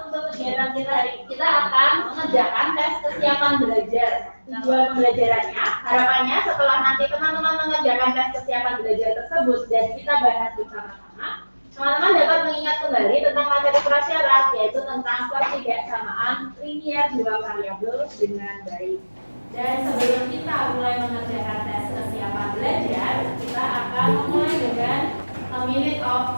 Untuk kegiatan kita hari ini, kita akan mengerjakan tes kesiapan belajar. Tujuan pembelajarannya, harapannya setelah nanti teman-teman mengerjakan tes kesiapan belajar tersebut dan kita bahas bersama-sama, teman-teman dapat mengingat kembali tentang materi prasyarat, yaitu tentang pertidaksamaan linear dua variabel dengan baik. Dan sebelum kita mulai mengerjakan tes kesiapan belajar, kita akan memulai dengan a minute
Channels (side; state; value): both; inverted; correlation -1.00